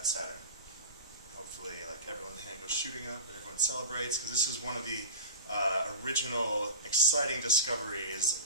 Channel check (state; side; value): inverted; both; correlation -0.30